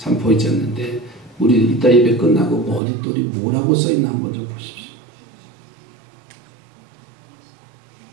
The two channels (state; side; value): drops out; left; at 2.8 s